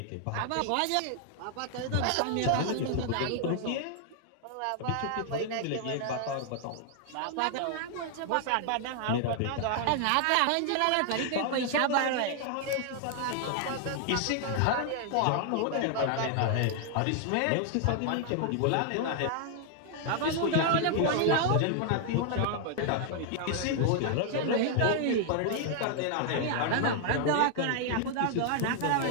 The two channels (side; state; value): both; different; correlation 0.00